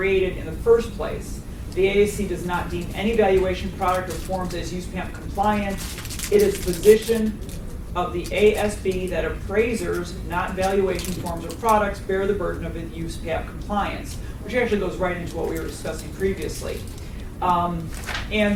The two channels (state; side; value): identical; both; correlation 1.00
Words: in the first place? The the AAC does not deem any valuation product or forms as USPAP compliant. It is the position of the ASB that appraisers, not valuation forms or products, bear the burden of USPAP compliance, which actually goes right into what we were discussing previously.